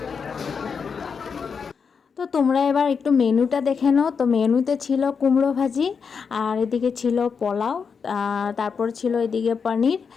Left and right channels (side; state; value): right; quieter; 5.9 dB